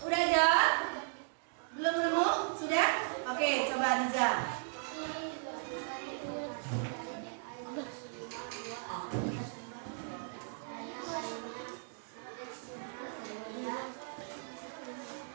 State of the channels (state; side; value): silent; left; digital silence